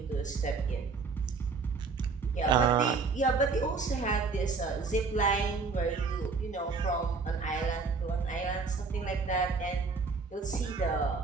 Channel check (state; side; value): quieter; left; 4.6 dB